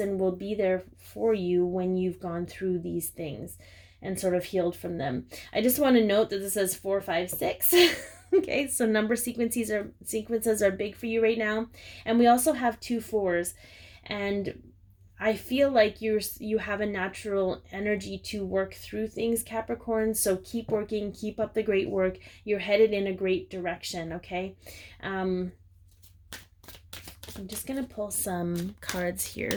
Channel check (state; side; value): identical; both; correlation 1.00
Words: will be there for you when you've gone through these things and sort of healed from them. I just want to note that this says 4, 5, 6. Okay, so number sequences are big for you right now. And we also have 2 4s, and I feel like you have a natural energy to work through things, Capricorn. So keep working, keep up the great work. You're headed in a great direction, okay? I'm just going to pull some cards